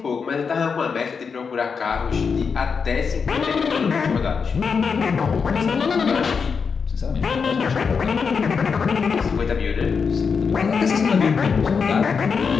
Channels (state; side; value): quieter; right; 5.7 dB